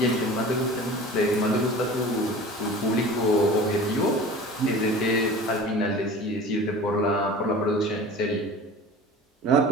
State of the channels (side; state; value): both; normal; correlation 0.39